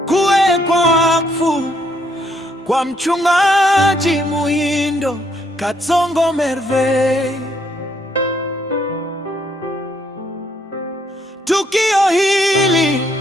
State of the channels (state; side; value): normal; both; correlation 0.71